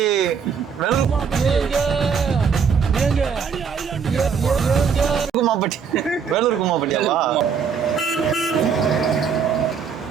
குமாம்பட்டி. வேலூர் குமாம்பட்டியாவா?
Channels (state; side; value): quieter; left; 6.5 dB